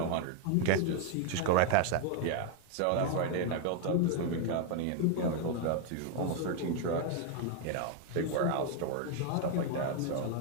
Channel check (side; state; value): both; different; correlation 0.00